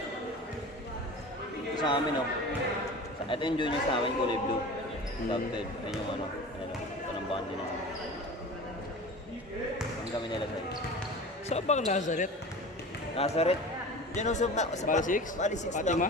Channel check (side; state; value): both; normal; correlation 0.36